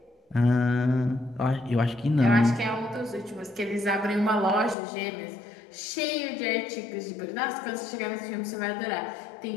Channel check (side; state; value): right; drops out; at 4.8 s